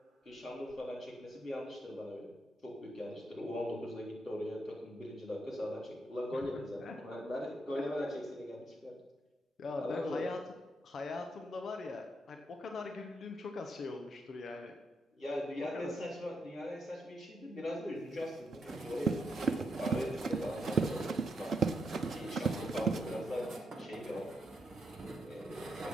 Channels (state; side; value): normal; both; correlation 0.80